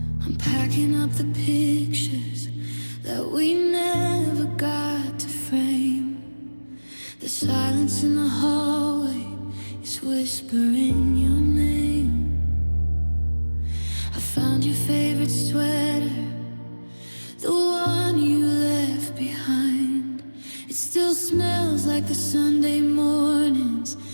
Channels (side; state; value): both; inverted; correlation -1.00